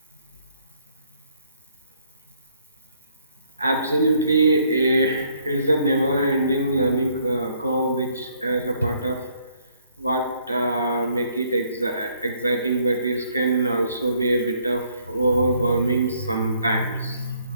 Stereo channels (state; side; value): inverted; both; correlation -0.67